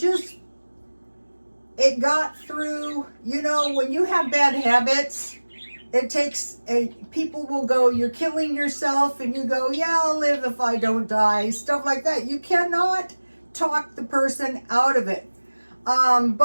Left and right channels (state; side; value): inverted; both; correlation -1.00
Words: got through, when you have bad habits, it takes people will go, you're killing yourself, and you go, yeah, I'll live if I don't die, stuff like that. You cannot talk the person out of it.